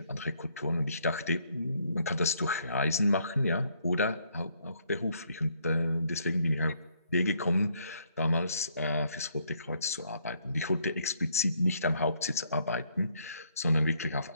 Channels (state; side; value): inverted; both; correlation -0.70